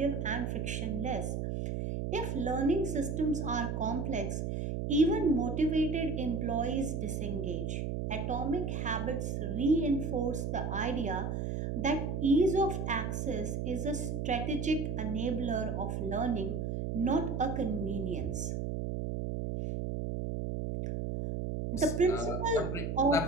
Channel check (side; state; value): right; noise; hum, 2 dB below the sound